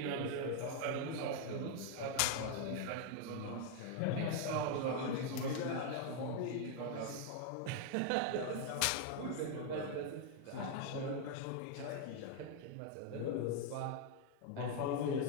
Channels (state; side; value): different; both; correlation 0.00